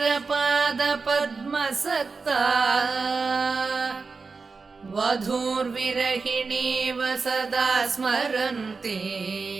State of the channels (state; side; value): quieter; left; 4.5 dB